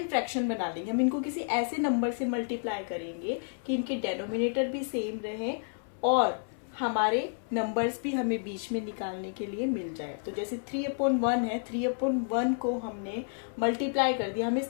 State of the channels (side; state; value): right; silent; 57 dB below the other